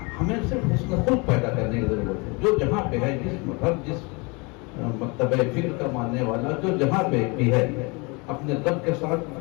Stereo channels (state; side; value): quieter; right; 28.8 dB